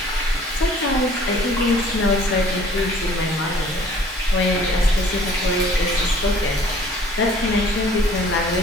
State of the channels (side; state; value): both; normal; correlation 0.53